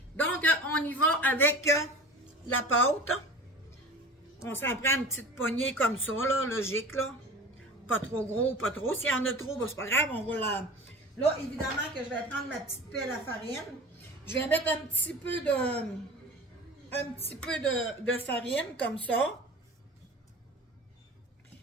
Donc, on y va avec la pâte. On s'en prend une petite poignée comme ça, là, logique, là. Pas trop gros, pas trop. S'il y en a trop, ben, c'est pas grave, on va la... Là, évidemment que je vais prendre ma petite pelle à farine. Je vais mettre un petit peu de farine, comme ça.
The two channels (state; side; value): normal; both; correlation 0.37